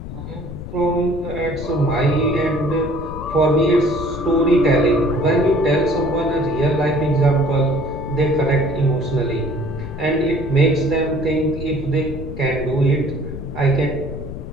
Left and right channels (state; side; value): noise; left; rumble, 9 dB below the sound